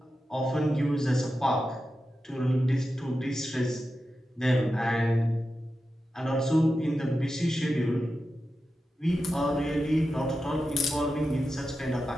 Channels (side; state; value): both; normal; correlation 0.91